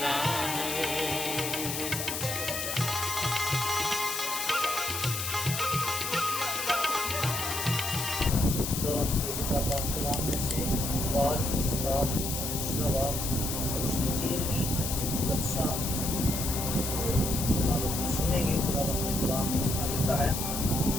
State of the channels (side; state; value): left; noise; hiss, 3 dB below the sound